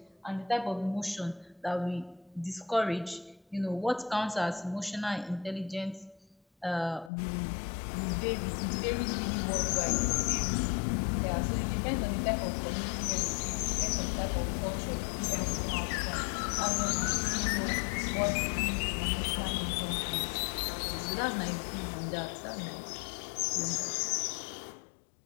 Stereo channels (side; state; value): right; drops out; at 7.1 s